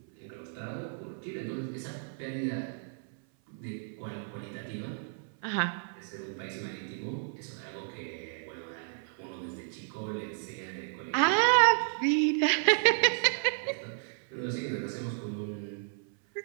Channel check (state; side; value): silent; left; 56 dB below the other